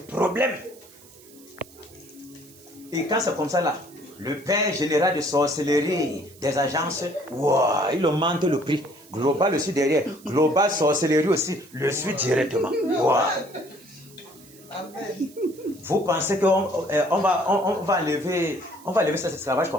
Et quand c'est comme ça là, le père général de sorcellerie des agences, wow, il augmente le prix. Global aussi derrière. Global sorcellerie aussi le suit directement. Wow. Vous pensez qu'on va enlever cet esclavage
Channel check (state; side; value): noise; right; hiss, 24 dB below the sound